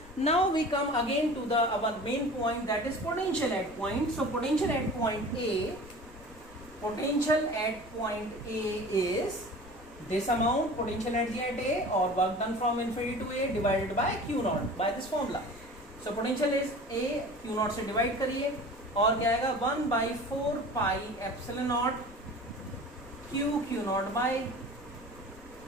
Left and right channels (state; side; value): noise; left; rumble, 21 dB below the sound